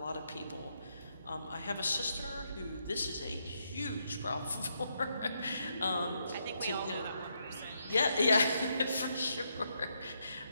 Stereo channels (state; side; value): inverted; both; correlation -0.78